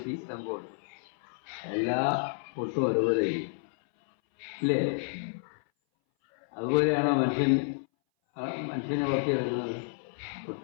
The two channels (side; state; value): right; silent; 58 dB below the other